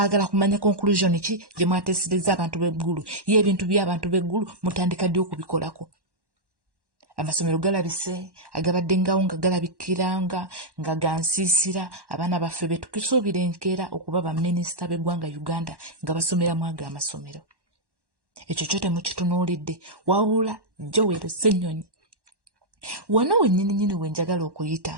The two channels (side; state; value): left; late; 1.1 ms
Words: kumanya conclusion ki gye mwateesereza abantu b'eggulu. Ye ebintu by'abantu b'eggulu mutandika ddi okubikolako? Amasomero galabise, agabadde ngawo nga galabikiranga nga gansiisira abaana baffe be tukisuubira enkeera okuba baminisita b'eggwanga Uganda nga basomeramu ago amasomero. Ekyo kyo temukitunuulidde. Wabula Joel Ssennyonyi wano wennyini we njagala okuyita